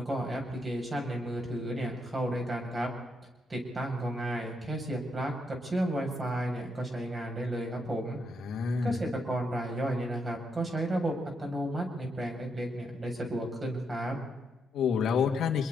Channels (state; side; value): normal; both; correlation 0.79